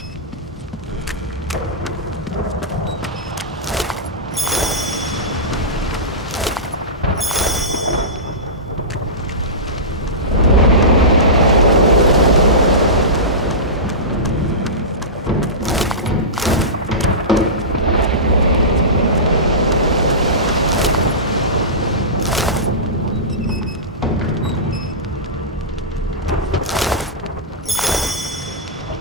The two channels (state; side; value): normal; both; correlation -0.19